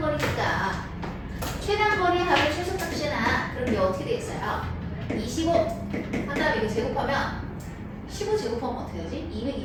최단거리 합의 최소값이나 그럼 이게 어떻게 되겠어요? 25 한 다음에 이거 제곱하면 15 제곱하면 어떻게 되지?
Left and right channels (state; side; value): identical; both; correlation 1.00